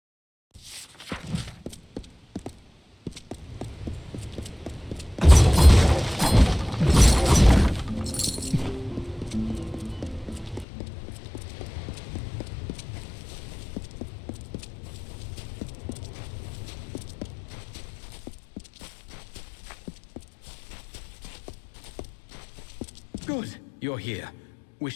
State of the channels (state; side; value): drops out; right; at 10.7 s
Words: Good, you're here.